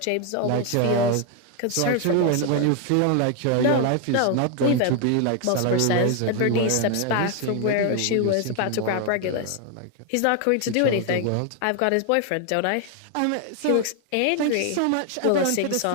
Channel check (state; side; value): different; both; correlation 0.00